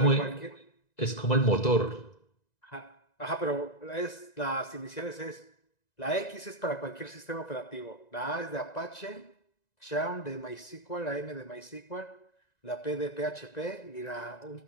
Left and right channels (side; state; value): right; late; 1.9 ms